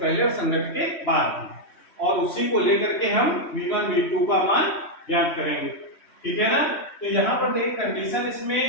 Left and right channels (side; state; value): right; late; 3.1 ms